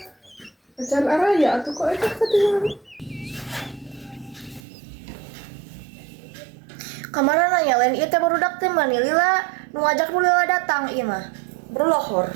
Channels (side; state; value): left; drops out; at 4.6 s